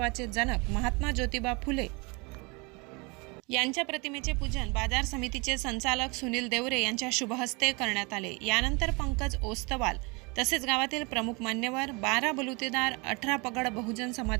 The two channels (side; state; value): left; quieter; 28.6 dB